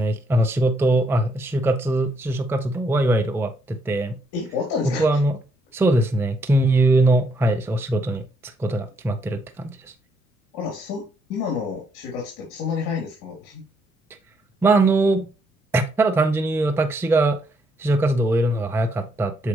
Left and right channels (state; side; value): normal; both; correlation 0.73